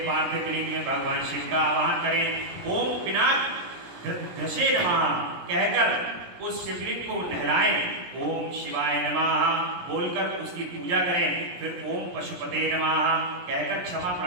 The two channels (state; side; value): late; left; 17 ms